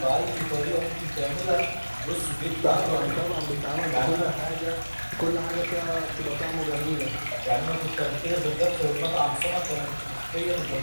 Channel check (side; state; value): both; inverted; correlation -1.00